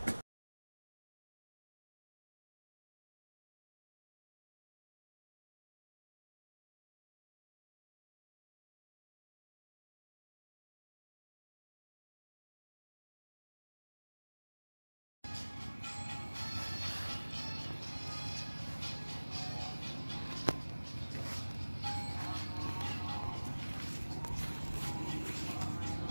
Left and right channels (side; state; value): both; inverted; correlation -1.00